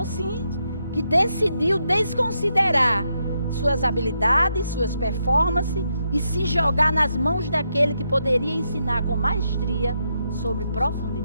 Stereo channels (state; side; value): inverted; both; correlation -0.81